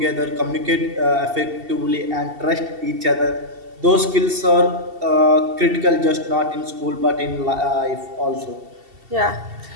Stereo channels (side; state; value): left; late; 2.7 ms